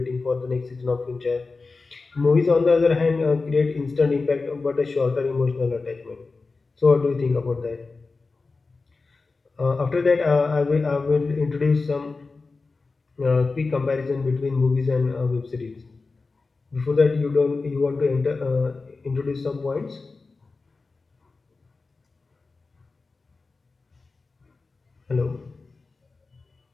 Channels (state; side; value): quieter; right; 3.9 dB